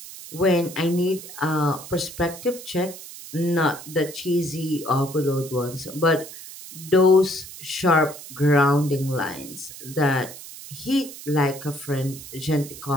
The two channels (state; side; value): noise; right; hiss, 14 dB below the sound